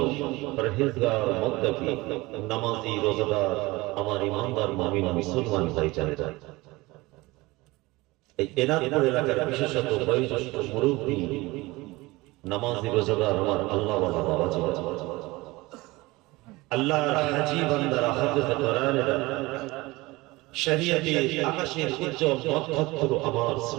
পরহেজগার মুত্তাকি নামাজি রোজাদার আমার ইমানদার মুমিন মুসলমান ভাইজানেরা এই এনাদপুর এলাকার বিশেষত বয়োজ্যেষ্ঠ মুরব্বি নামাজি রোজাদার আমার আল্লাহ ওয়ালা বাবাজি আল্লাহর হাজী বান্দারা হাফেজ কোরআনেরা শরীয়তে আকাশের উজ্জ্বল নক্ষত্র আমার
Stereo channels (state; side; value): quieter; left; 21.4 dB